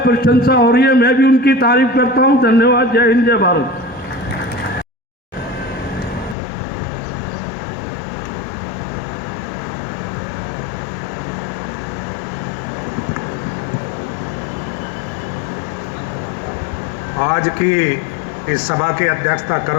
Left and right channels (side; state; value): right; drops out; at 6.4 s